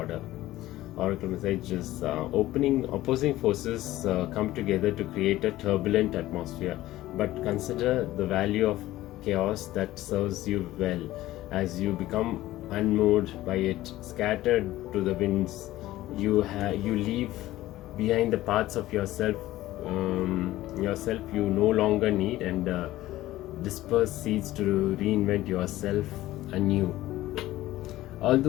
Oracle message is opposing forces come together to create a turbulent atmosphere, but consider the value of chaos that serves you well. As you become unmoved by it, scattered to the winds, you leave behind the parts of yourself you no longer need, and disperse seeds to reinvent yourself anew.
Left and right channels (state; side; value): quieter; right; 15.9 dB